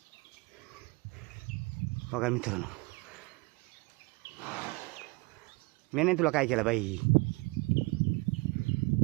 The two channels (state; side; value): quieter; left; 26.5 dB